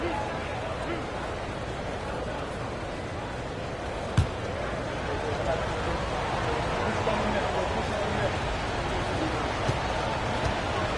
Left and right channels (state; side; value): identical; both; correlation 1.00